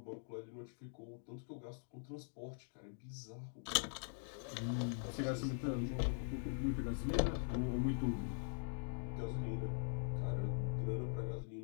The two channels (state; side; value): silent; right; digital silence